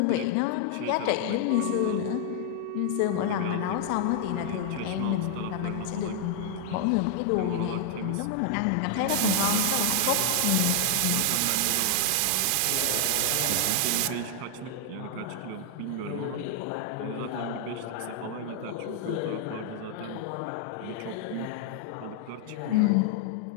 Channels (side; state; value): both; different; correlation 0.00